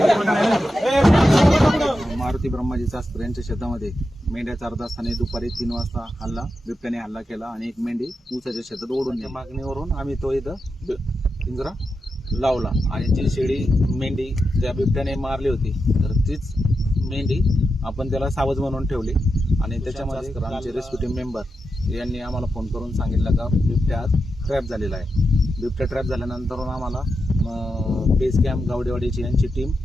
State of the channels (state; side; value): normal; both; correlation 0.88